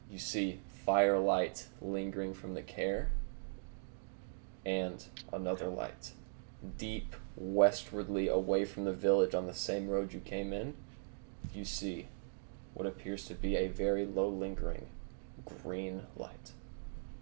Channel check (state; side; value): silent; left; digital silence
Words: you see firelight lingering from the care and another light. Deep westwardly away from the village on the same road you came in, you see what appears to be a very low lingering green light.